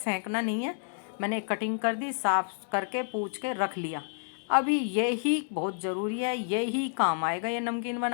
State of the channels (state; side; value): silent; right; digital silence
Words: नहीं है। मैंने कटिंग कर दी, साफ करके पूछ के रख लिया। अभी यही बहुत ज़रूरी है, यही काम आएगा ये नमकीन